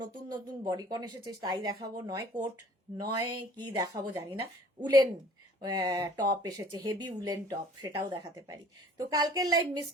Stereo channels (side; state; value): both; normal; correlation 0.52